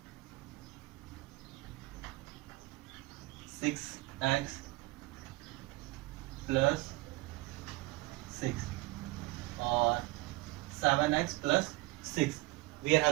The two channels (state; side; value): quieter; left; 21.7 dB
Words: 6x plus 6 or 7x plus 6, we are